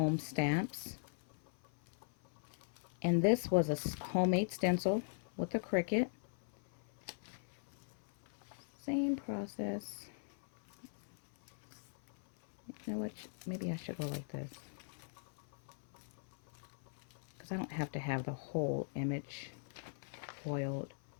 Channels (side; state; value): right; silent; 51 dB below the other